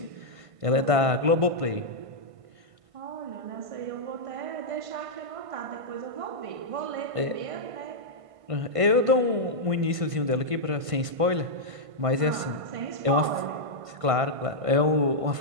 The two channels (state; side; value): late; left; 1.5 ms